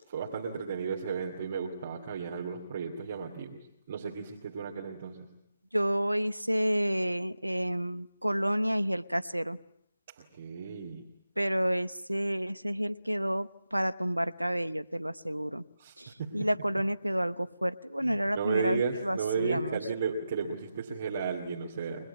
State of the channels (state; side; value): inverted; both; correlation -0.91